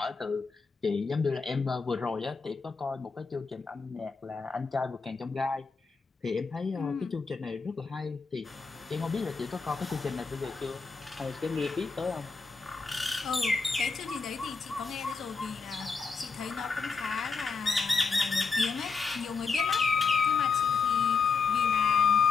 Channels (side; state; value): right; quieter; 4.8 dB